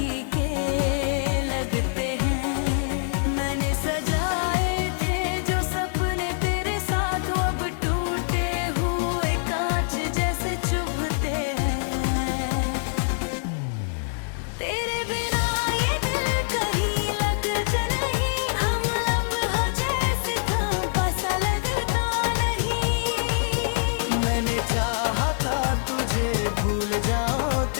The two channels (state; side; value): silent; right; 62 dB below the other